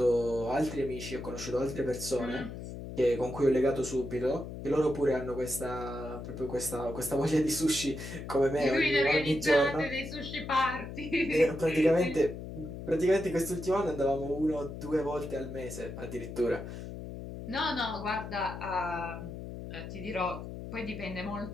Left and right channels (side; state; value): left; noise; hum, 9 dB below the sound